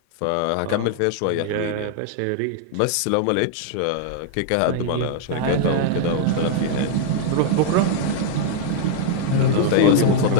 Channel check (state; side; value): different; both; correlation -0.01